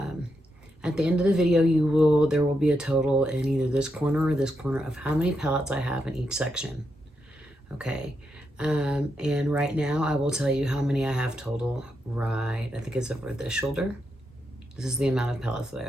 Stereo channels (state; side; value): normal; both; correlation 0.83